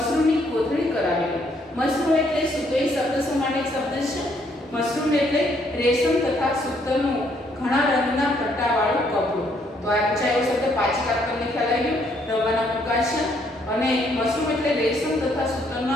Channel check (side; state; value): both; normal; correlation 0.69